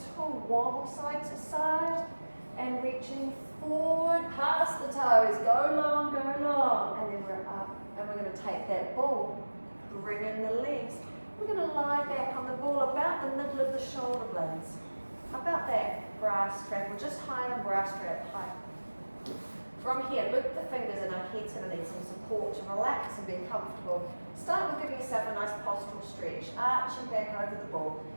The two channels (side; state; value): both; inverted; correlation -1.00